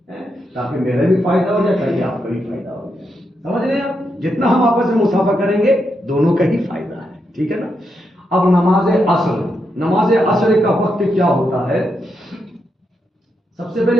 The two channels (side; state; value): both; normal; correlation 0.83